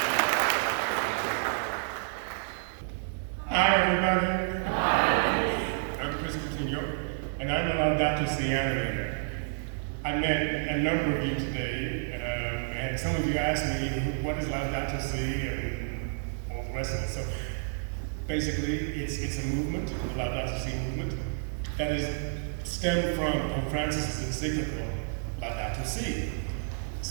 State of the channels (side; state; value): left; silent; digital silence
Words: Hi, everybody. Hi. I'm Chris Coutinho, and I'm a Laudato Si animator. I met a number of you today, and some of you asked me, what is Laudato Si, and all the rest of it. So basically, it's a movement, the Laudato Si movement, that is stemmed from Pope Francis's encyclical, Laudato Si.